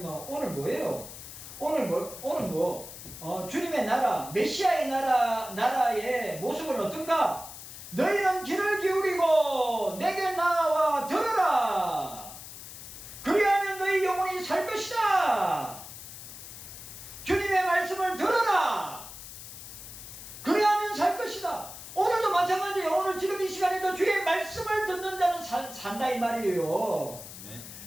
오늘 뭐예요? 주님의 나라, 메시아의 나라의 모습은 어떤가? 너희는 귀를 기울이고 내게 나와 들으라. 그리하면 너희 영혼이 살 것이다. 주님의 말씀을 들어라. 그리하면 살 것이다. 오늘도 마찬가지예요. 오늘 지금 이 시간에도 주의 말씀을 듣는 자는 산다 이 말이에요. 네.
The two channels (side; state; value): left; noise; hiss, 13 dB below the sound